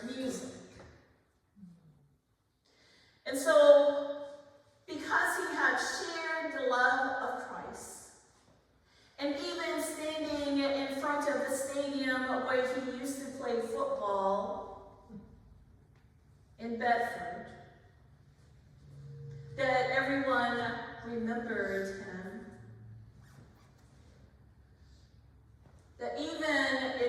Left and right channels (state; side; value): identical; both; correlation 1.00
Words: music. And so, because he had shared the love of Christ, and even standing in front of the stadium where he used to play football in Bedford, that everyone remembered him, that even